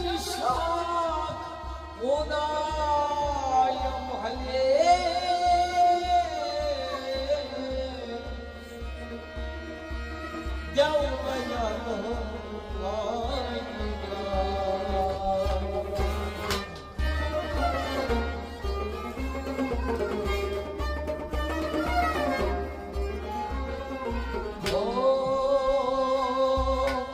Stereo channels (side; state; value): both; identical; correlation 1.00